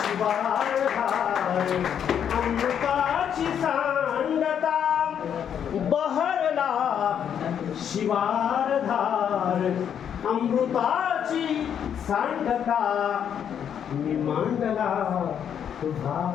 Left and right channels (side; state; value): right; quieter; 8.6 dB